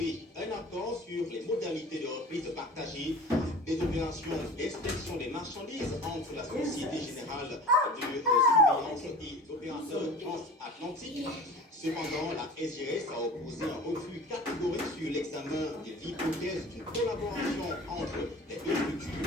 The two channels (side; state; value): both; normal; correlation 0.39